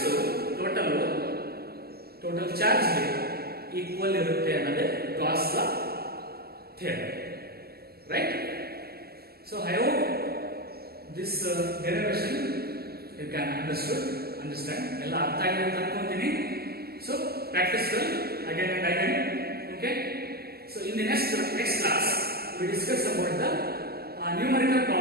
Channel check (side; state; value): left; late; 0.45 ms